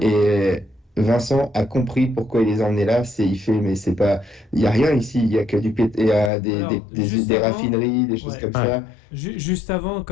Vincent a compris pourquoi il les a emmenés là. Il y a rien ici. Il y a que des raffineries, des choses comme ça. Juste avant,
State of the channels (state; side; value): drops out; right; at 6.3 s